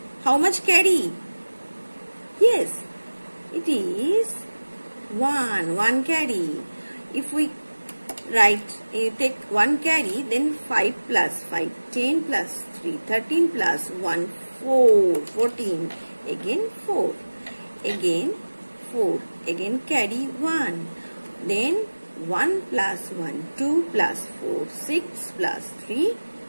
how much carry? Yes, it is 1. 1 carry. If we take 1 carry, then 5 plus 5, 10 plus 3, 13 plus 1, 4, 14. Again 4. Again 4. Again carry 1. Then 1 plus 1, 2 plus 4, 6 plus 3,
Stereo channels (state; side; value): inverted; both; correlation -1.00